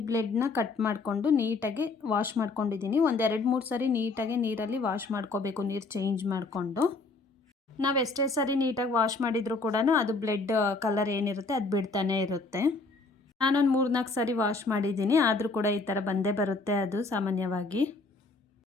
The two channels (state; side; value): quieter; right; 3.7 dB